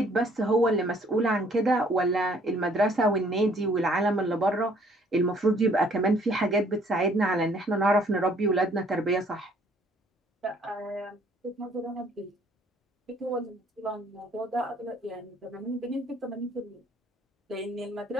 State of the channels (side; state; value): both; normal; correlation 0.61